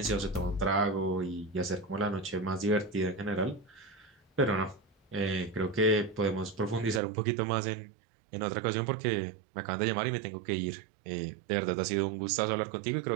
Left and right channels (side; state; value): left; drops out; at 7.0 s